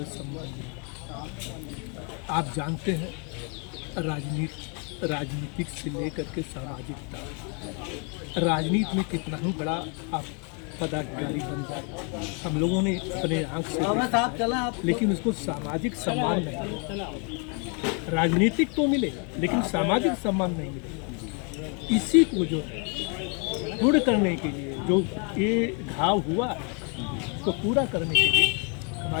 सम्मान मिले। आप जानते हैं राजनीतिक से लेकर के सामाजिक तक राजनीति में कितना ही बड़ा आप पदाधिकारी बन जाए, हम लोगों ने अपने आंख से देखा, लेकिन उसको सामाजिक सम्मान नहीं। राजनीतिक तो मिले लेकिन सामाजिक सम्मान नहीं मिले। इसी को जो है पूर्ण करने के लिए, जो ये घाव हुआ तो पूरा करने के लिए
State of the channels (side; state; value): right; quieter; 36.8 dB